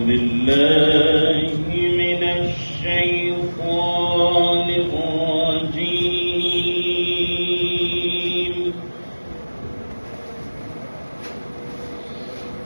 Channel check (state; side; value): inverted; both; correlation -1.00